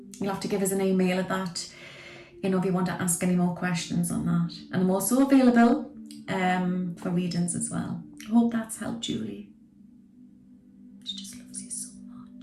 You'll have to give us an email at that, you know, if you want to ask any more questions on that. And I'm also available for readings as well. I hope that's helped, Julie. She just loves you so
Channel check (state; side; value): identical; both; correlation 1.00